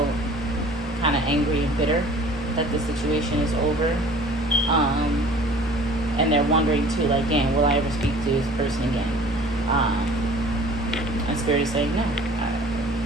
kind of angry and bitter that the situation is over. And they're wondering too, like, damn, will I ever speak to this person again? And Spirit is saying, no.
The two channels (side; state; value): both; normal; correlation 0.48